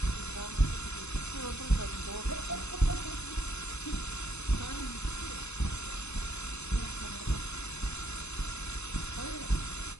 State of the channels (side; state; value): right; late; 0.81 ms